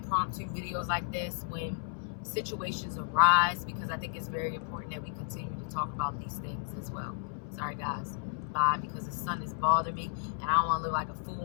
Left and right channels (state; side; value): silent; right; 56 dB below the other